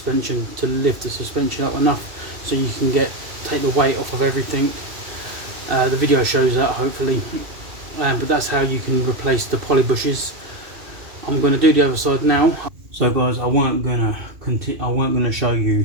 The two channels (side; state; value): left; late; 2.7 ms